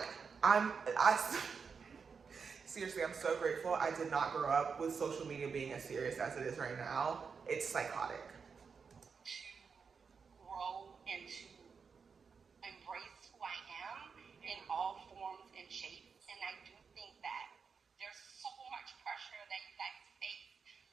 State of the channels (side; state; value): left; quieter; 5.7 dB